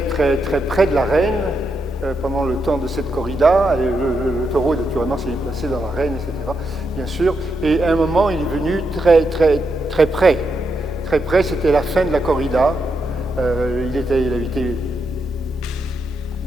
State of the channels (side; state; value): both; normal; correlation 0.83